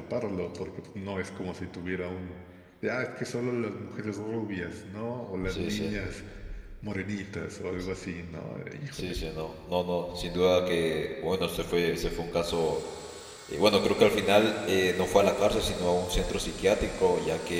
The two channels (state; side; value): identical; both; correlation 1.00